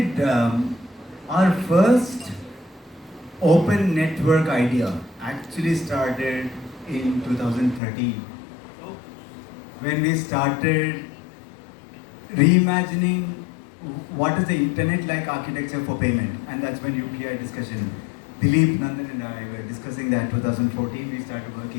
our first open network idea actually started in 2013? When we started reimagining what is the internet-like architecture for payment, and that's when UPI discussion. Dilip, Nandan and I were discussing that. 2014 we started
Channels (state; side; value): drops out; right; at 7.8 s